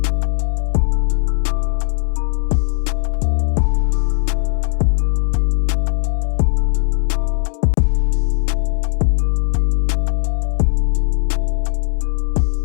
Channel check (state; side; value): silent; right; digital silence